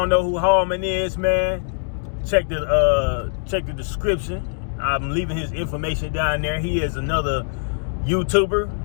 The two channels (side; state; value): right; silent; digital silence